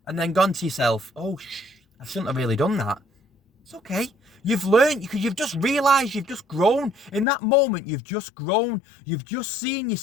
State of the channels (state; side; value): drops out; right; at 7.2 s